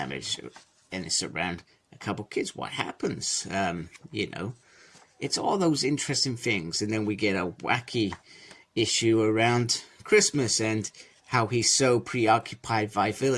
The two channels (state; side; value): identical; both; correlation 1.00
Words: and it's around a couple kids. What happens? You know, it's all those interesting things. And then we get a wacky issue around Christmas and how he's so preoccupied by